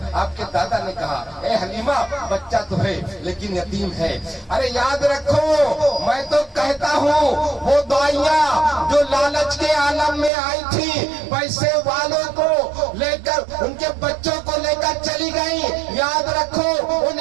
आपके दादा ने कहा ए हलीमा बच्चा तो है लेकिन यतीम है। अरे याद रखो मैं तो कहता हूँ वो दाइयाँ जो लालच के आलम में आई थी, पैसे वालों को लेकर उनके बच्चों को लेकर चली गई, याद रखो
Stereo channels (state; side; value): drops out; left; at 10.3 s